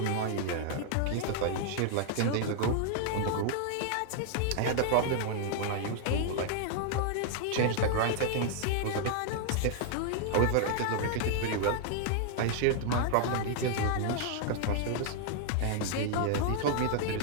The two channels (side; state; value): both; different; correlation 0.00